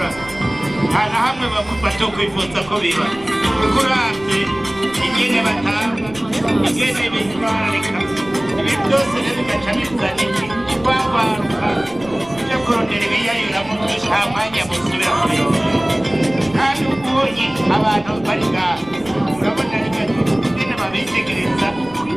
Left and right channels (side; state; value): right; noise; rumble, 19 dB below the sound